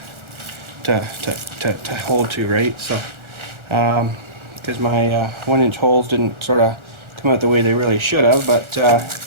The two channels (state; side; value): late; left; 1.4 ms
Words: to hold to, right? So because my 1-inch holes didn't sort of come out the way they really should have, but